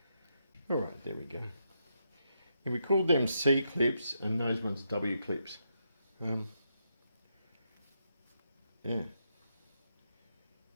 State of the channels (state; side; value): inverted; both; correlation -0.81